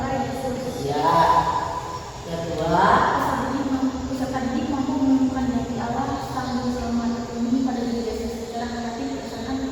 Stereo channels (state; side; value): identical; both; correlation 1.00